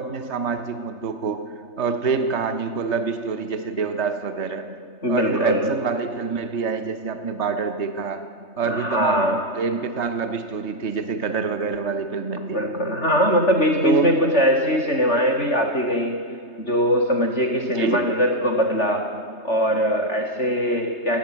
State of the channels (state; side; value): late; right; 3.3 ms